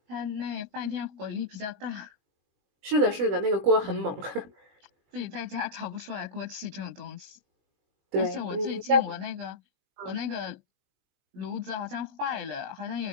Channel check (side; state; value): left; late; 20 ms